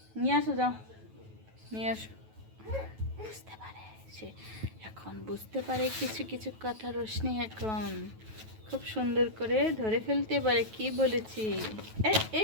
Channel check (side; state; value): left; late; 9.2 ms